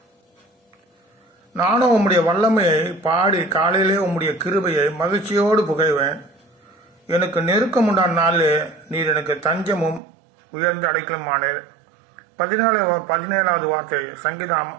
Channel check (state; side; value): drops out; left; at 10.0 s